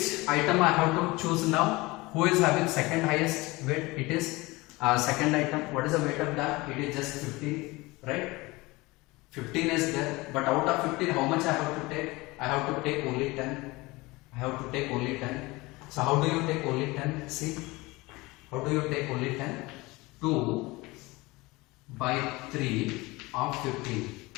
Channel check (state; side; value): quieter; right; 22.2 dB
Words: item I have to choose now? Who is having second highest weight? It is second item. What is the weight of that? It is just 15, right? 15 is there, but out of 15, how much I have to take? I have to take only 10. I have to take only 10. So how do you take only 10? See, how do you take only 10? 2 by 3 of 15.